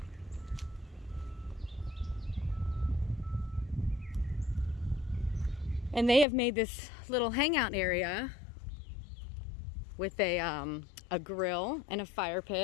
And they have made this little hangout area with a grill and a fire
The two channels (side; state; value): right; drops out; at 6.2 s